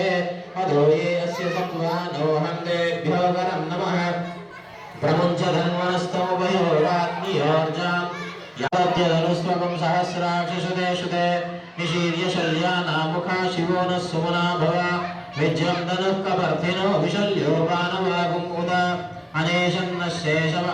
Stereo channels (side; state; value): both; identical; correlation 1.00